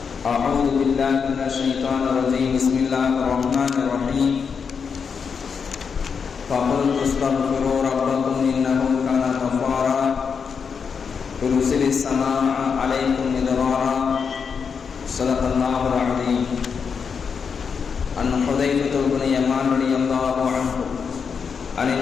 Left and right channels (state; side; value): quieter; right; 6.1 dB